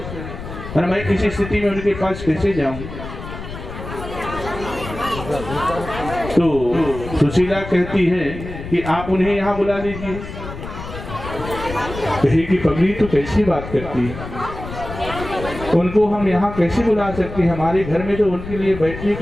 और मैं किसी स्थिति में उनके पास कैसे जाऊं? तो सुशीला कहती है कि आप उन्हें यहाँ बुला लीजिए। कहे कि पगली तो कैसी बात करती है, उनको हम यहाँ कैसे बुला सकते हैं? हमारे घर में तो उनके लिए बैठने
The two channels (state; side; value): noise; left; rumble, 10 dB below the sound